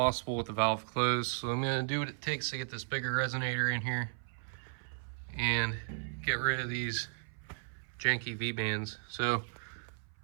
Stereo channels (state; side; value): silent; left; 54 dB below the other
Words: with the valve closed. So I'm gonna do what it takes to get this bigger resonator in here and get rid of these janky V-bands. So